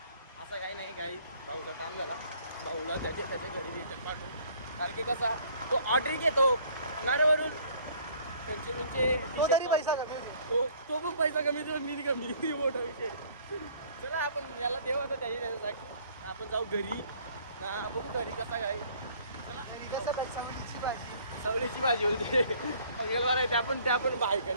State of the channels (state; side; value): inverted; both; correlation -0.57